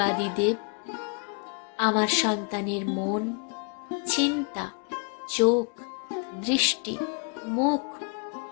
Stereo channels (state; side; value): quieter; right; 37.0 dB